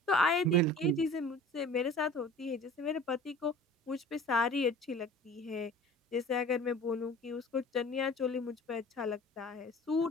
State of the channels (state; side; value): normal; both; correlation 0.43